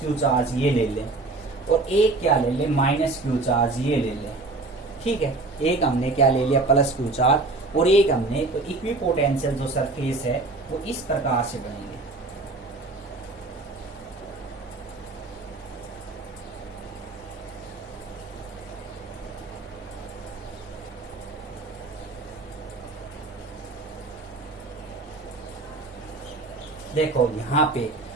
क्यू चार्ज ये ले लें और एक क्या ले लें माइनस क्यू चार्ज ये ले लें, ठीक है, एक हमने क्या ले लिया प्लस क्यू चार्ज और एक हमने, तो इक्विपोटेंशियल जो सरफेस है वो इस प्रकार से बनेंगे। देखो यहाँ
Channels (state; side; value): quieter; left; 3.3 dB